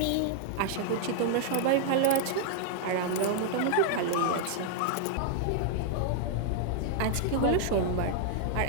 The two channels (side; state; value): both; different; correlation -0.01